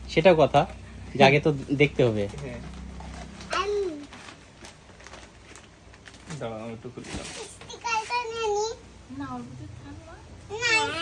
সেটা কথা যে আগে তো দেখতে হবে। দাঁড়াও আমি একটু খুলে দিলাম।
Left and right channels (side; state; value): both; identical; correlation 1.00